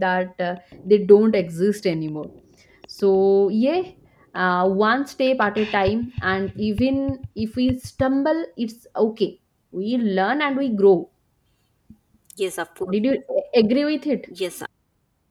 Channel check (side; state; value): both; identical; correlation 1.00